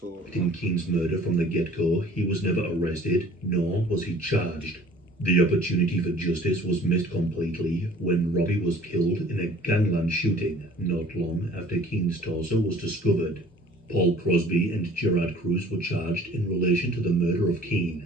In Keane's murder from the get-go, he was never arrested, nor was he charged. The opportunity for justice was missed completely when Robbie was killed in a gangland shooting not long after Keane's torso was discovered. Paul Crosby and Gerard Cruz were charged in relation to the murder of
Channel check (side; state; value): both; normal; correlation 0.51